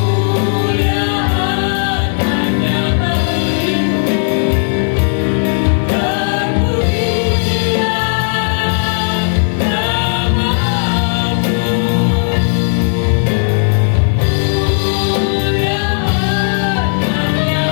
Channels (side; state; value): right; silent; digital silence